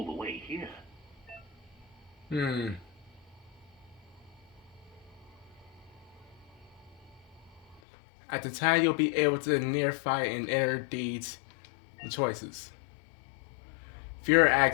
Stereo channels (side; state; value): right; drops out; at 7.8 s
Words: the way here. At the time, you'll be able to near fight and enter deeds and choices. Fear